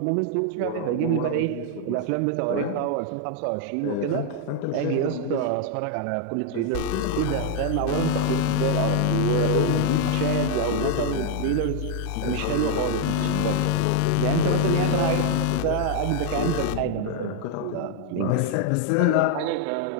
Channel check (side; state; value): both; different; correlation 0.00